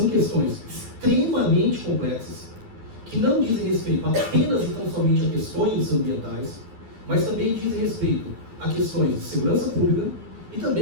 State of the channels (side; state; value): left; late; 12 ms